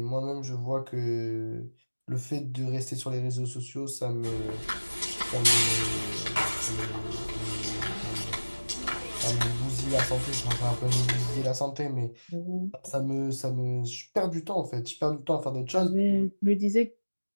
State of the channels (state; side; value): inverted; both; correlation -1.00